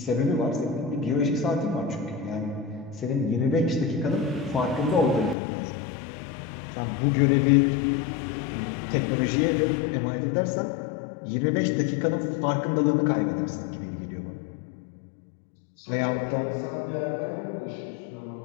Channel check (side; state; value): right; drops out; at 5.4 s